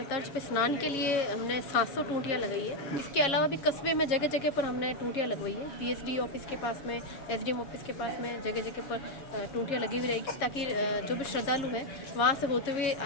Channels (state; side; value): late; right; 7.2 ms